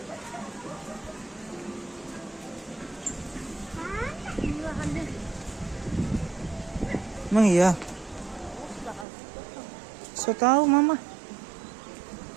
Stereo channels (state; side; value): drops out; left; at 9.1 s